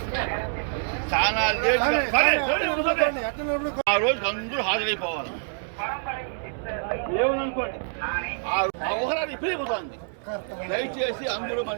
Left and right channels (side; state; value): left; silent; digital silence